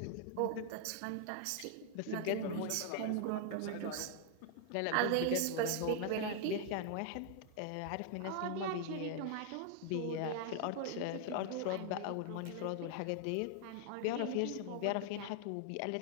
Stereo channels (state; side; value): different; both; correlation 0.00